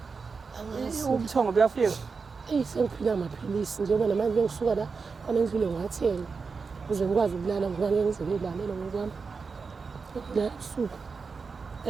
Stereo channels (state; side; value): quieter; left; 4.9 dB